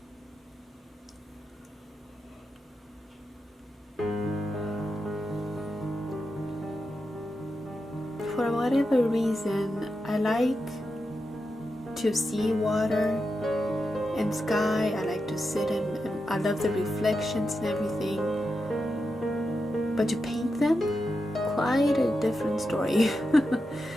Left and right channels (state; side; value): normal; both; correlation 0.88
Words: For whatever reason, I like to see water and sky. I like to sit and I love the reflections and everything. But to paint them, quite a different story.